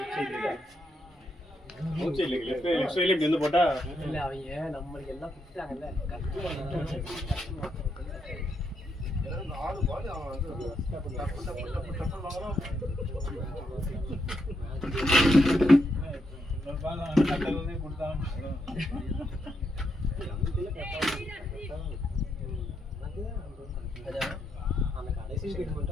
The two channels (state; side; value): normal; both; correlation 0.80